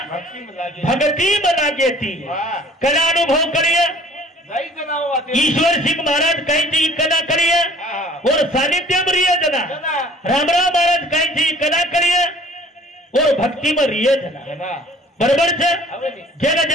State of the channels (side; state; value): both; normal; correlation 0.52